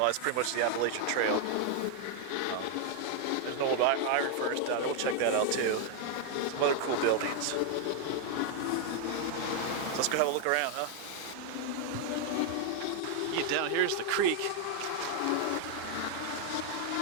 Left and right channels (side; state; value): both; different; correlation 0.00